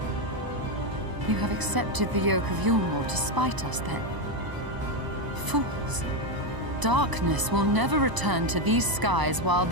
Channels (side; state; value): left; late; 1.0 ms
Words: You have accepted the yoke of Yulmore to spite us, then? Fools. Darkness will never return to these skies while